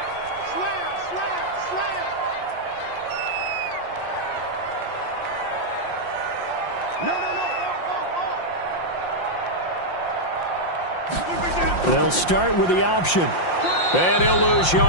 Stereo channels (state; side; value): late; right; 5.7 ms